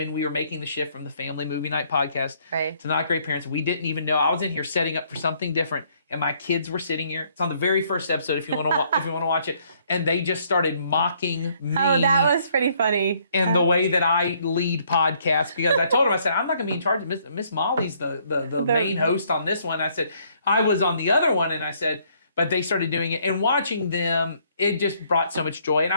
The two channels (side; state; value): both; inverted; correlation -0.66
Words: we were making the shift from the Family Movie Night podcast Right. to Not Great Parents. We didn't even know. I was in here setting up for something different, and my kids were sitting here. It's on the very first episode if you want to if you want to watch it. And they just started mocking me. Oh, that was pretty funny. and the way that I lead podcasts, because I told them, I said, I'm not going to be in charge of Miss Molly's the main host on this one. I said, I was on the other one, and I said, but they started doing it, and watching them, it just brought so much joy, and